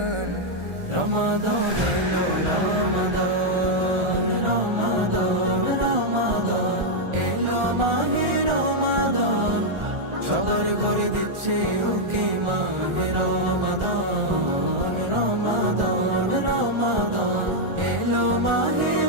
রমাদান এলো রমাদান, রমাদান রমাদান এলো মাহে রমাদান। সবার ঘরে দিচ্ছে উকি মাহে রমাদান, রমাদান রমাদান এলো মাহে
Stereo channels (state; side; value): late; left; 1.4 ms